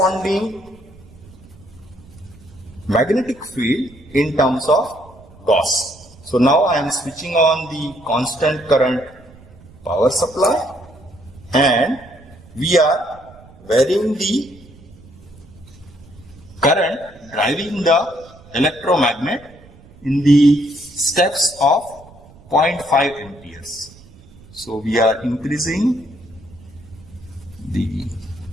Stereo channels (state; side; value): noise; right; rumble, 23 dB below the sound